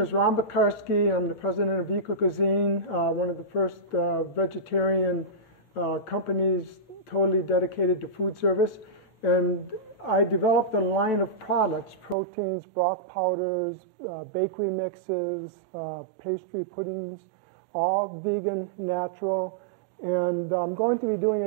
is Ron Bakarski. I'm the president of Eco-Cuisine, one of the first vegetarian companies totally dedicated to food service. And I developed a line of products, proteins, broth powders, bakery mixes, pastry puddings, all vegan, natural. And I'm going to be doing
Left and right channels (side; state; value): left; drops out; at 12.2 s